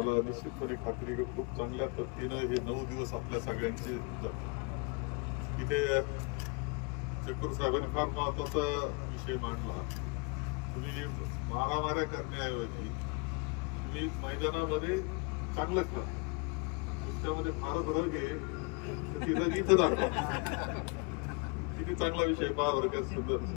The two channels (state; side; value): quieter; right; 31.2 dB